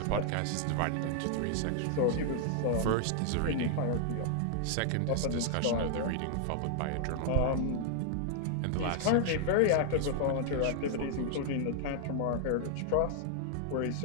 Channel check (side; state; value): both; different; correlation 0.00